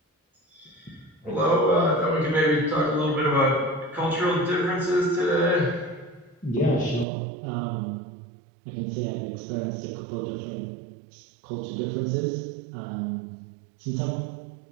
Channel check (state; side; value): drops out; left; at 7.1 s